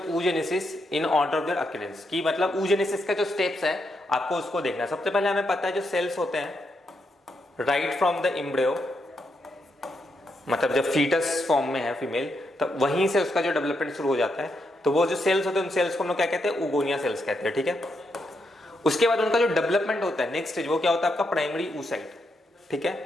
oogenesis in order of their occurrence. की मतलब oogenesis का जो स्टेप्स है आपको उसको देखना है। सबसे पहले हमें पता है जो सेल्स होते हैं राइट फ्रॉम द एम्ब्रियो, मतलब जब फीटस फॉर्म में है फीमेल, तब वहीं से उसका जो डेवलपमेंट शुरू हो जाता है, तो वो जो सेल्स होते हैं उन सेल्स को हम लोग क्या कहते हैं? ओगोनिया सेल्स कहते हैं, ठीक है। उसके बाद उनका जो डेवलपमेंट होता है नेक्स्ट स्टेज, वो क्या होता है आपका? प्राइमरी oocyte, ठीक है।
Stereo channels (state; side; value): normal; both; correlation 0.81